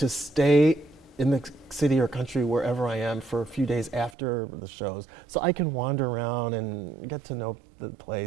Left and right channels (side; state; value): left; drops out; at 4.2 s